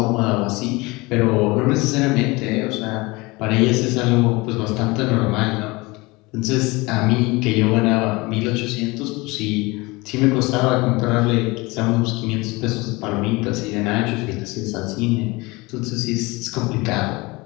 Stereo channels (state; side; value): quieter; right; 23.7 dB